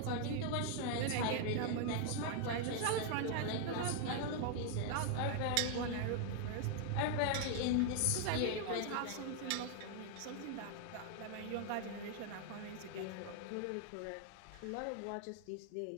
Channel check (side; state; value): both; different; correlation 0.00